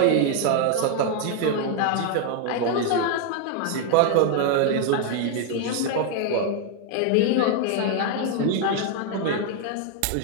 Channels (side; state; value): both; different; correlation 0.00